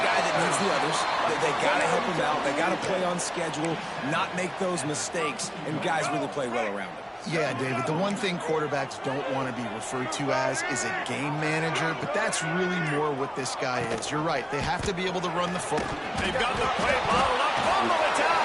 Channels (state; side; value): identical; both; correlation 1.00